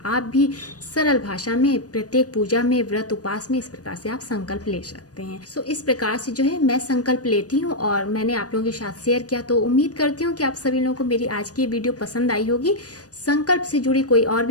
आप भी सरल भाषा में प्रत्येक पूजा में, व्रत उपवास में इस प्रकार से आप संकल्प ले सकते हैं। सो इस प्रकार से जो है मैं संकल्प लेती हूँ और मैंने आप लोगों के साथ शेयर किया। तो उम्मीद करती हूँ कि आप सभी लोगों को मेरी आज की वीडियो पसंद आई होगी। संकल्प से जुड़ी कोई और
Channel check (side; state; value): right; late; 0.68 ms